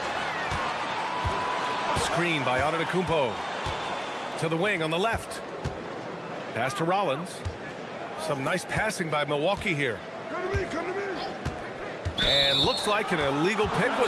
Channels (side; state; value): both; identical; correlation 1.00